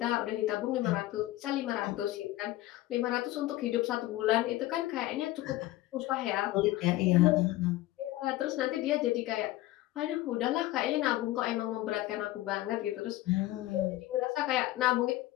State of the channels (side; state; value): right; quieter; 16.5 dB